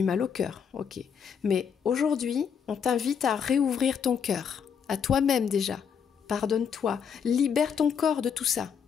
mal au cœur, ok. Mais aujourd'hui, on t'invite à réouvrir ton cœur, à toi-même déjà. Pardonne-toi, libère ton corps de tout ça.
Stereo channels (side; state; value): right; quieter; 7.2 dB